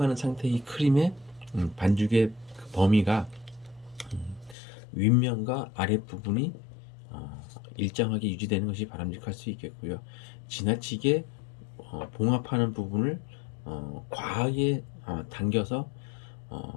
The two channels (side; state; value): right; drops out; at 4.5 s